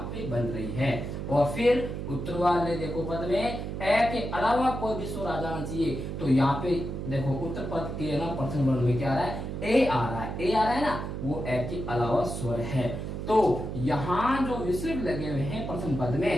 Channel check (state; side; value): noise; right; hum, 5 dB below the sound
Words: पे बन रही है। और फिर उत्तर वाले देखो पद में ए के अलावा कोई भी स्वर आ जाना चाहिए, तो यहाँ पे देखो उत्तर पद के ना प्रथम वर्ण में क्या आ रहा है, ए आ रहा है, ए आ रहा है ना, वो ए के अलावा स्वर है। तो यहाँ जो विसर्ग लगे हुए हैं प्रथम पद